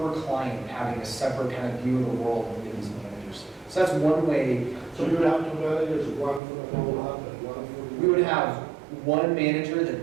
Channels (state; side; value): drops out; left; at 6.4 s